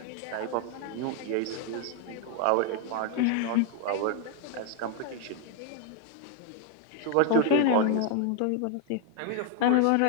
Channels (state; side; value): different; both; correlation 0.00